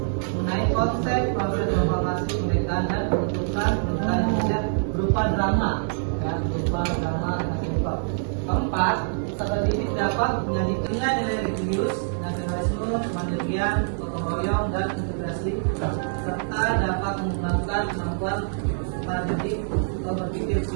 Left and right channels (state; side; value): silent; left; digital silence